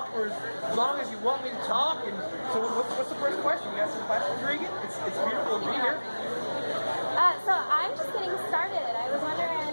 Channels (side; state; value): both; inverted; correlation -1.00